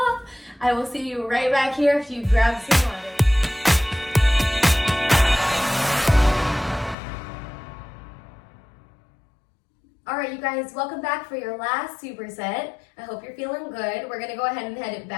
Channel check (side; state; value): right; drops out; at 7.0 s